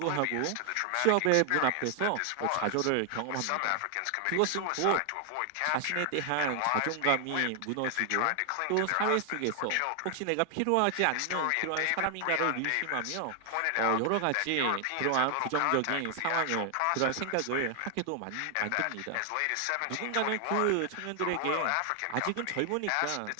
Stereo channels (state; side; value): different; both; correlation 0.00